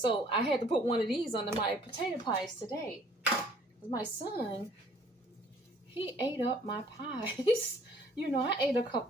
I had to put one of these under my potato pies today. My son, he ate up my pies. I ate a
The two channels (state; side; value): normal; both; correlation 0.58